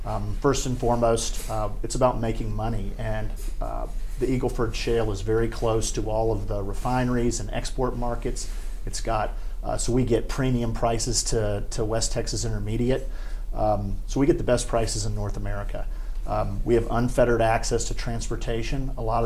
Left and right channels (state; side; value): identical; both; correlation 1.00